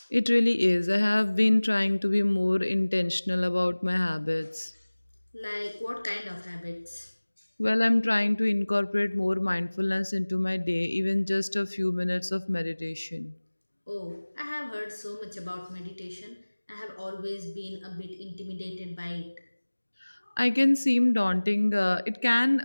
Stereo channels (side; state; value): both; inverted; correlation -1.00